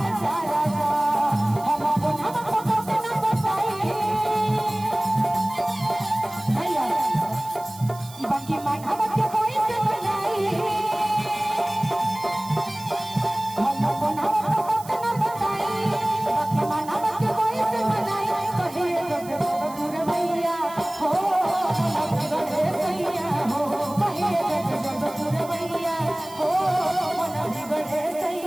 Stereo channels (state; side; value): noise; right; hiss, 18 dB below the sound